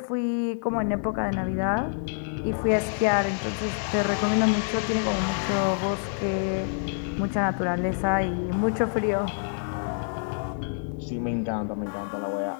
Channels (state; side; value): silent; right; 58 dB below the other